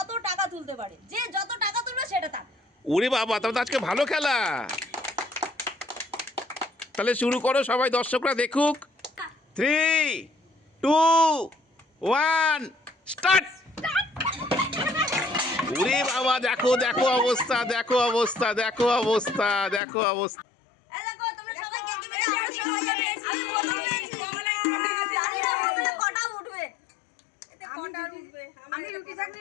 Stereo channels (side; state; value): right; drops out; at 19.8 s